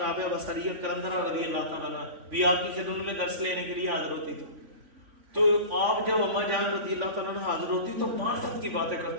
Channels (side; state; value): left; late; 3.5 ms